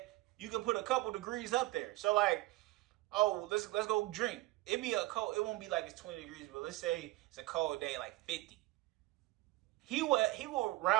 you can put a couple degrees up there. So like, oh, let's go drink. It won't be like it's 20 degrees, but let's say it's a cold day, like 50. He will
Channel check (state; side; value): quieter; left; 19.4 dB